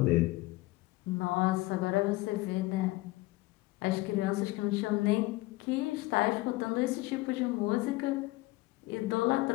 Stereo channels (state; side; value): quieter; right; 20.3 dB